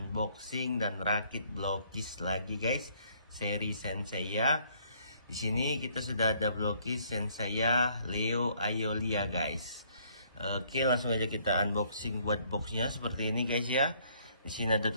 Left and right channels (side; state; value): both; inverted; correlation -0.64